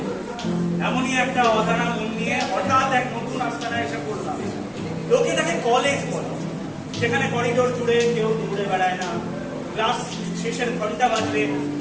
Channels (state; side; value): identical; both; correlation 1.00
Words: এমনই একটা অজানা মন নিয়ে হঠাৎ এক নতুন আস্তানায় এসে পড়লাম। লোকে তাকে কলেজ বলে। সেখানে করিডোর জুড়ে কেউ দৌড়ে বেড়ায় না, ক্লাস শেষের ঘন্টা বাজলে